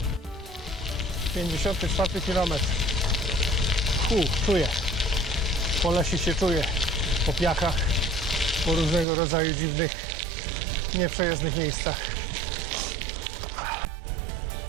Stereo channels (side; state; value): left; drops out; at 9.1 s